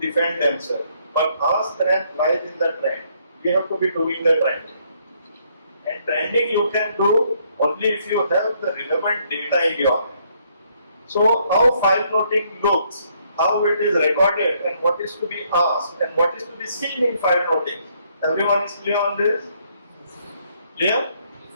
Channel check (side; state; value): both; inverted; correlation -0.69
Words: themselves. But our strength lies in the trend. We have to be doing the trending. And trending you can do only if you have the relevant data in your hand. So how file noting looks, how it is recorded and what is to be asked and what is to be seen in file noting. Everyone is clear on this? Clear?